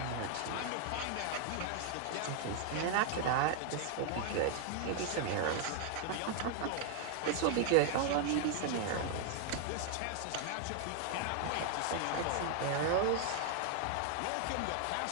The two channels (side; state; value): both; different; correlation 0.00